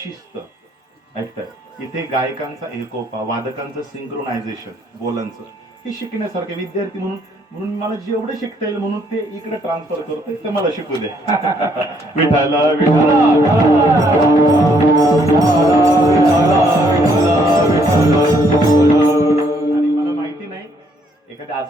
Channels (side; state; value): both; normal; correlation 0.69